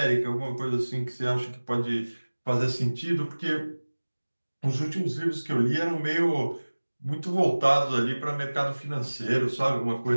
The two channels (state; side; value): inverted; both; correlation -1.00